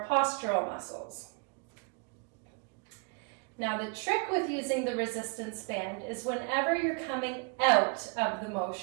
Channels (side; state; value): left; quieter; 34.7 dB